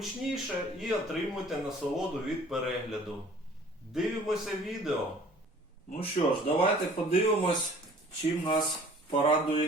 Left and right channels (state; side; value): normal; both; correlation 0.51